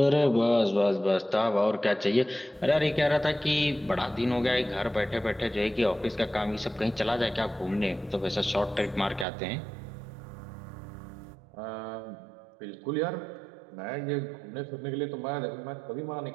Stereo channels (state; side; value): drops out; left; at 9.2 s